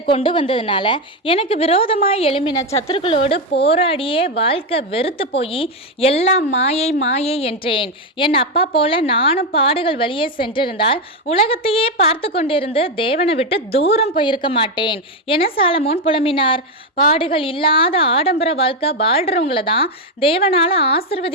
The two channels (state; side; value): normal; both; correlation 0.07